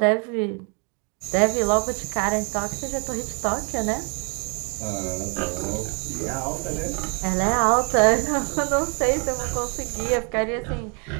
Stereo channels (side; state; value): left; quieter; 33.5 dB